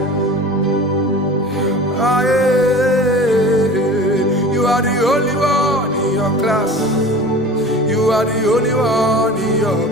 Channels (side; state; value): left; noise; hum, 30 dB below the sound